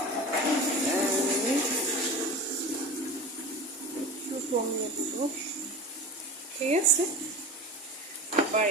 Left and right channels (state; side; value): normal; both; correlation 0.32